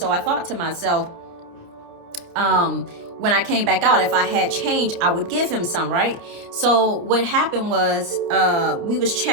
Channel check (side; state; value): left; late; 29 ms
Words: I thought to myself, when I came back out, if I had change, I would give him some, right? So what happened was, we was